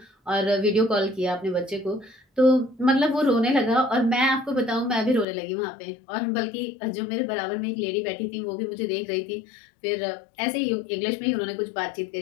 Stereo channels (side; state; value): right; drops out; at 5.2 s